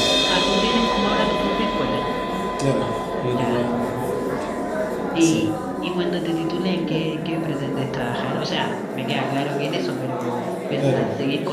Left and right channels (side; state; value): both; identical; correlation 1.00